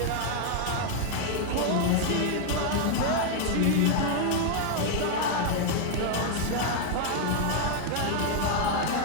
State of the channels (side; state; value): both; different; correlation 0.00